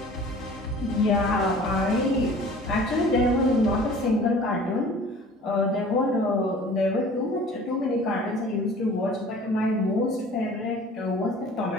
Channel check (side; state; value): both; normal; correlation 0.46